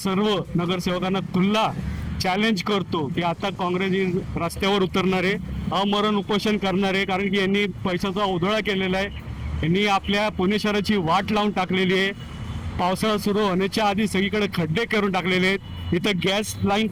नगरसेवकांना खुल्ला चॅलेंज करतो की आता काँग्रेस रस्त्यावर उतरणार आहे, अमरण उपोषण करणार आहे. कारण की यांनी पैशाचा उधळा केलेला आहे. यांनी आपल्या पुणे शहराची वाट लावून टाकलेली आहे. पावसाळा सुरू होण्याच्या आधी सगळीकडे खड्डे करून टाकलेले आहेत. इथं गॅस लाईन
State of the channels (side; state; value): both; identical; correlation 1.00